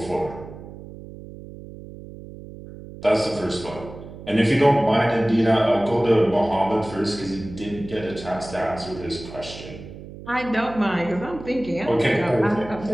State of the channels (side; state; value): right; noise; hum, 14 dB below the sound